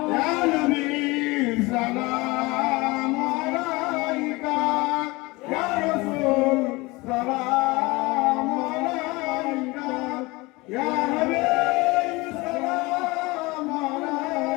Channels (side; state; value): right; quieter; 23.2 dB